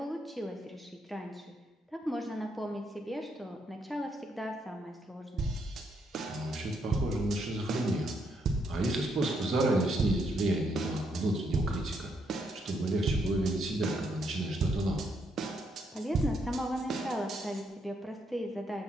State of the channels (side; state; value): both; normal; correlation 0.76